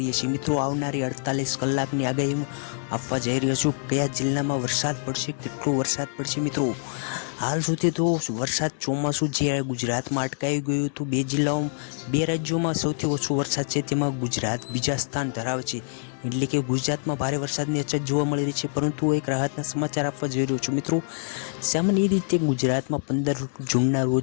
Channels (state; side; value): silent; right; digital silence